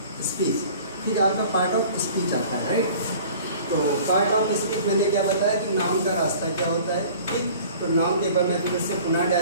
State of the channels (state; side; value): inverted; both; correlation -0.46